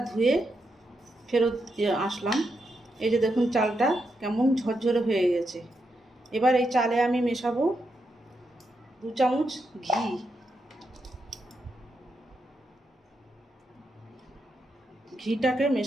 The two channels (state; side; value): normal; both; correlation 0.83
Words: ধুয়ে ফেরত আসলাম। এই যে দেখুন চালটা কেমন ঝরঝরে হয়ে গেছে। এবার এই চালে আমি মেশাবো 2 চামচ ঘি। ঘিটাকে